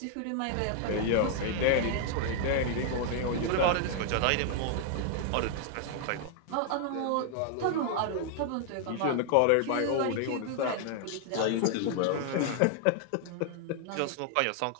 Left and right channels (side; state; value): both; different; correlation 0.00